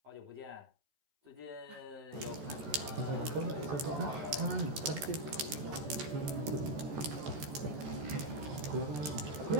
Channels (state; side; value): late; left; 14 ms